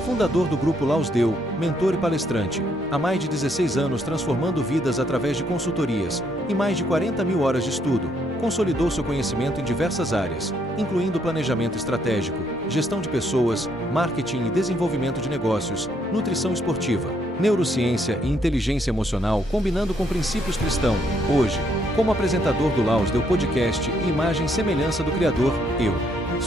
fundador do Grupo Laus Deu, mentor e palestrante, há mais de 16 anos transformando vidas através de consultorias e mais de 40 mil horas de estudo, consolidou seu conhecimento em diversas áreas, incluindo planejamento estratégico, gestão de pessoas, marketing e desenvolvimento de negócios, nutrição esportiva, neurociência e inteligência emocional combinando com princípios cristãos. Hoje, como apresentador do Laus Deu Podcast e imagem e semelhança do Criador, eu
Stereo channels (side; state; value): both; normal; correlation 0.72